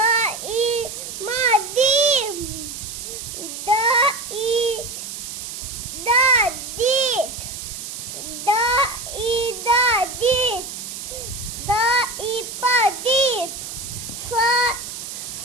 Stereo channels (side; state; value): right; noise; hiss, 8 dB below the sound